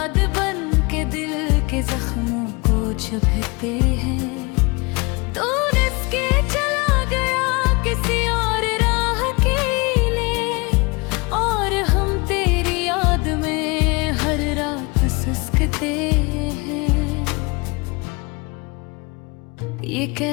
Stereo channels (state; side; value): quieter; right; 27.3 dB